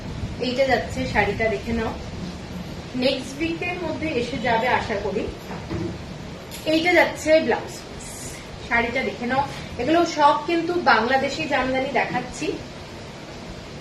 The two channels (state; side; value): identical; both; correlation 1.00